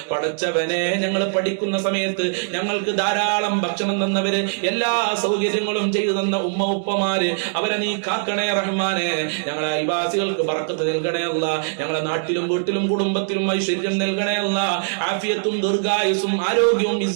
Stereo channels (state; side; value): silent; left; digital silence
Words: പടച്ചവനെ, ഞങ്ങൾ പഠിക്കുന്ന സമയത്ത് ഞങ്ങൾക്ക് ധാരാളം ഭക്ഷണം തന്നവര്, എല്ലാ സൗകര്യങ്ങളും ചെയ്തു തന്ന ഉമ്മ ഉപ്പമാര്, അവരെ നീ കാക്കണേ റഹ്മാനെ. ഞങ്ങളെ അയൽവാസികൾക്ക് ബറക്കത്ത് നൽകണേ അല്ല, ഞങ്ങളുടെ നാട്ടിലും വീട്ടിലും കുടുംബത്തിലും ഐശ്വര്യം നൽകണേ അല്ല. ആഫിയത്തും ദീർഘായുസും ആരോഗ്യവും